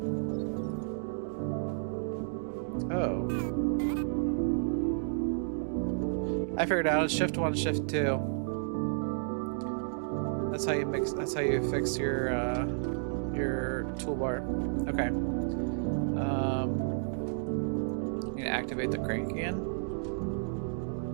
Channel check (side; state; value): left; silent; digital silence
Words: Oh. I figured out it's shift 1, shift 2. That's how you mix, that's how you fix your toolbar. Okay. You need to activate the crank again.